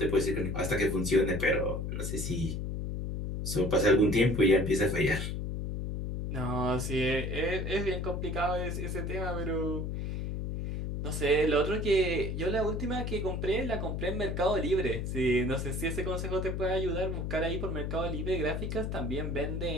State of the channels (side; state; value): left; noise; hum, 3 dB below the sound